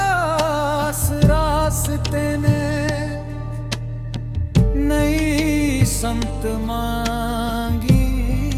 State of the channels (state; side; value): identical; both; correlation 1.00